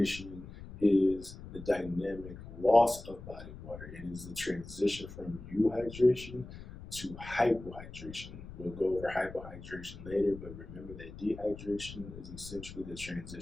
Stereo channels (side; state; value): left; noise; rumble, 14 dB below the sound